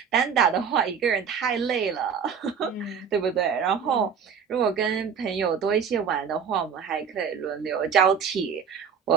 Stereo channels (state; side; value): quieter; left; 6.9 dB